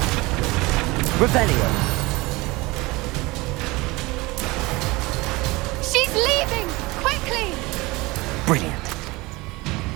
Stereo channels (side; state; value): left; quieter; 22.4 dB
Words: Revelio. She's leaving! Quickly! Brilliant.